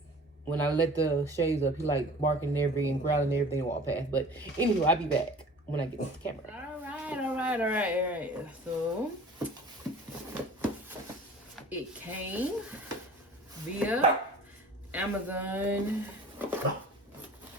when I let the shades up, he like barking and everything and growling and everything and walk past. But anyway, I'll be back when I get this camera. All right. So it came via Amazon.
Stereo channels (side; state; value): both; normal; correlation 0.44